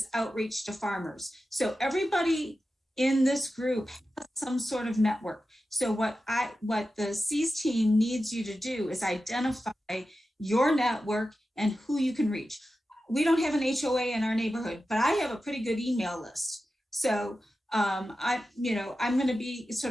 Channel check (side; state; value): both; normal; correlation 0.92